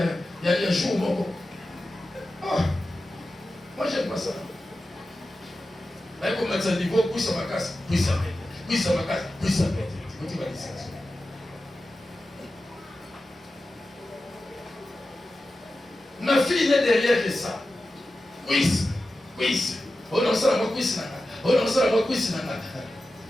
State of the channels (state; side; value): normal; both; correlation 0.93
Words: il y a jour mon. Ah, moi j'aime pas ça. Mais comme ça niveau quiz à ma casse, quiz à ma casse, quiz à ma casse. Ma fille n'est derrière que ça. Quiz. Oh non, ça va quiz. Oh non, ça va quiz.